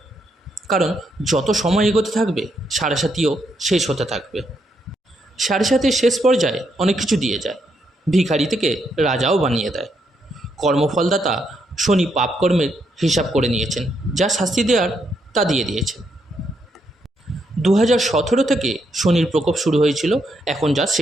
কারণ যত সময় এগোতে থাকবে সাড়ে শেষ হতে থাকবে। সাড়ে শেষ পর্যায়ে অনেক কিছু দিয়ে যায়, ভিখারি থেকে রাজাও বানিয়ে দেয়। কর্মফলদাতা শনি পাপকর্মের হিসাব করে নিয়েছেন, যা শাস্তি দেওয়ার তা দিয়ে দিয়েছেন। 2017 থেকে শনির প্রকোপ শুরু হয়েছিল, এখন যা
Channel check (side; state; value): both; normal; correlation 0.78